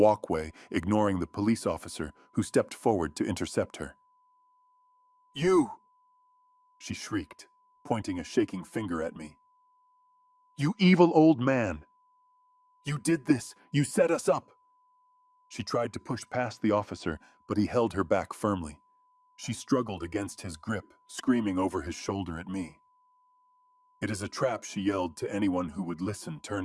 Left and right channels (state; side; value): identical; both; correlation 1.00